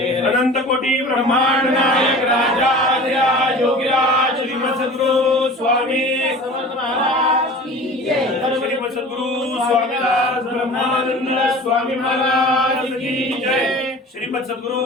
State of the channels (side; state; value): both; normal; correlation 0.40